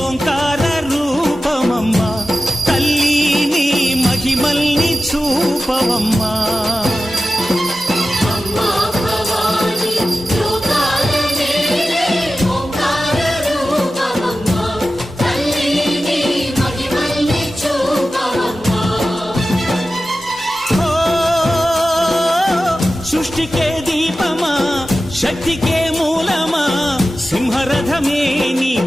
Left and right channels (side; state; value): both; normal; correlation 0.94